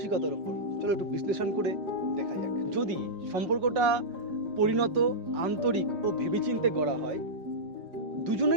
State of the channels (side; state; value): left; late; 5.0 ms